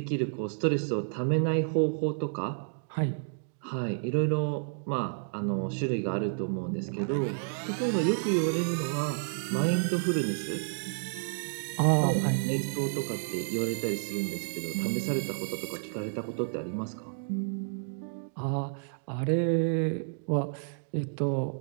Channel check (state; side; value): silent; left; digital silence